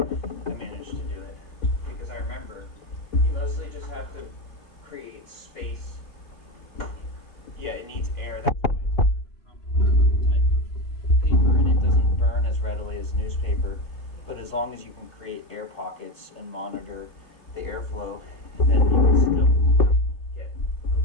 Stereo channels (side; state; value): right; late; 3.1 ms